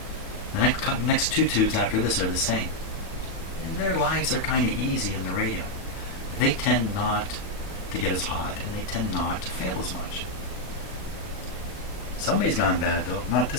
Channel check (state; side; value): late; right; 37 ms